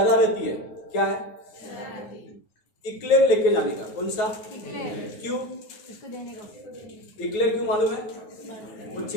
है, क्या है? इक्लेयर लेके जाने का। कौन सा? क्यों? इसको देने को। इक्लेयर क्यों मालूम है? वो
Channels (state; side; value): late; right; 9.5 ms